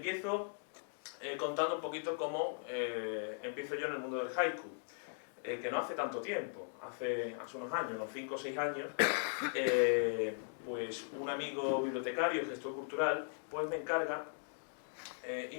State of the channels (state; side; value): silent; right; digital silence